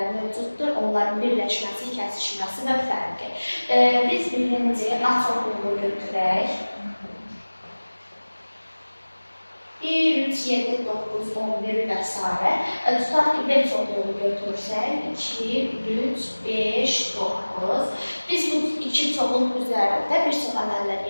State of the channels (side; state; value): both; inverted; correlation -1.00